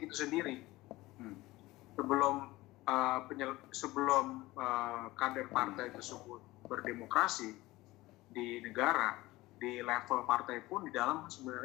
itu sendiri. Sebelum kader partai tersebut berdemokrasi di negara, di level partai pun di dalam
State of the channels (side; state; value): right; quieter; 19.1 dB